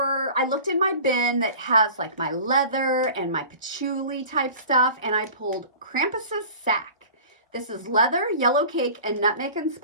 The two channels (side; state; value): both; inverted; correlation -0.40